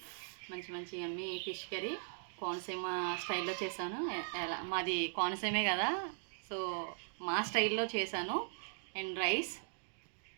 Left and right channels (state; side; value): silent; left; digital silence